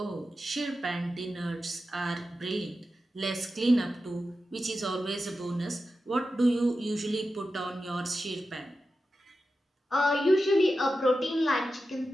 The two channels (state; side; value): normal; both; correlation 0.92